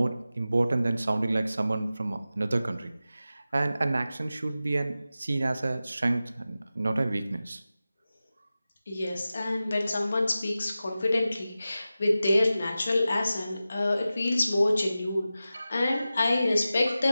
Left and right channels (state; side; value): inverted; both; correlation -0.94